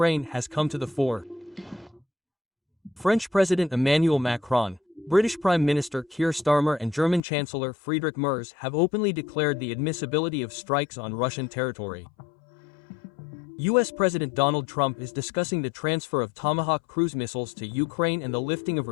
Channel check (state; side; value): drops out; right; at 7.2 s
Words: has come to the fore. French President Emmanuel Macron, British Prime Minister Keir Starmer and German Chancellor Friedrich Merz have openly declared the admissibility of strikes on Russian territory. US President Donald Trump is discussing the transfer of Tomahawk cruise missiles to Ukraine and the lifting of